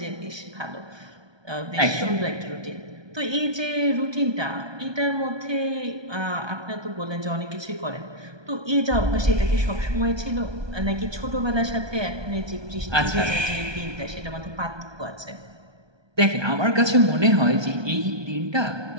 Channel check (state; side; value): late; left; 1.2 ms